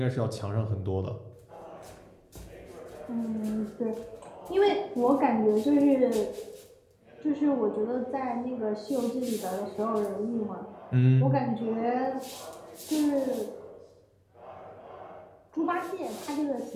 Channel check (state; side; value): identical; both; correlation 1.00